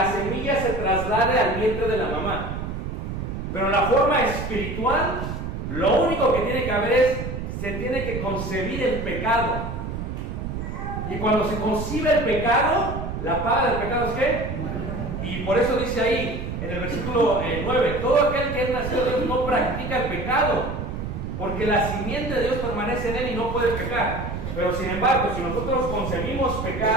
semilla se traslade al vientre de la mamá. Pero en la forma espiritual, lo único que tiene que haber es, se tiene que concebir el pecado. Y cuando se concibe el pecado, la paga del pecado es ¿qué? Y por eso dice ahí, en el versículo 9, todo aquel que es nacido de Dios no practica el pecado, porque la simiente de Dios permanece en él y no puede pecar. Pero sin embargo, si nosotros concebimos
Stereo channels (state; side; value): noise; right; rumble, 5 dB below the sound